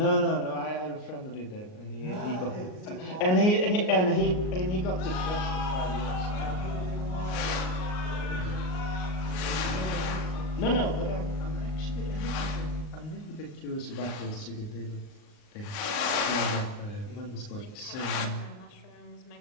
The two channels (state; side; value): late; right; 39 ms